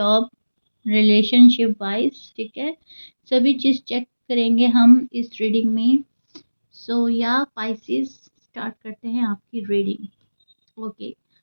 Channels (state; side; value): inverted; both; correlation -1.00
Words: relationship wise, ठीक है। सभी चीज़ चेक करेंगे हम इस रीडिंग में। सो या पाइसेस, स्टार्ट करते हैं आपकी रीडिंग। ओके,